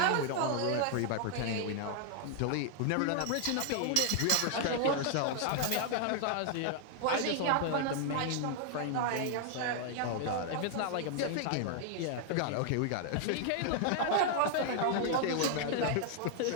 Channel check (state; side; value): different; both; correlation 0.00